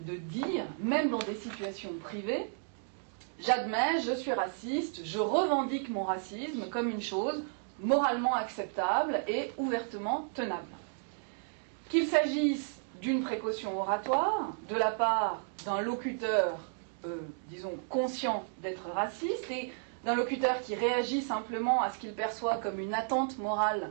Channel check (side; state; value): left; silent; digital silence